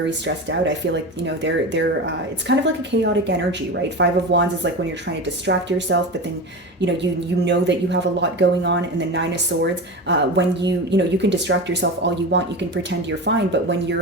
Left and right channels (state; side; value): normal; both; correlation 0.26